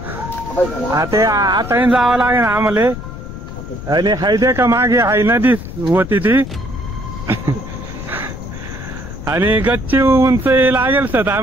आता जावं लागेल आम्हाला आणि हाय का मागे हाय नदी होती ती आणि गच्ची उंच लागेल सर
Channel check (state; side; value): noise; left; rumble, 10 dB below the sound